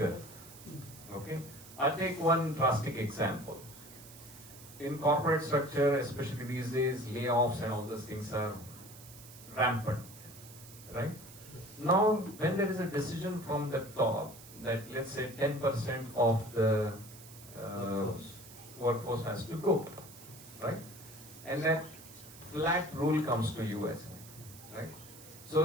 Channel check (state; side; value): noise; right; hiss, 18 dB below the sound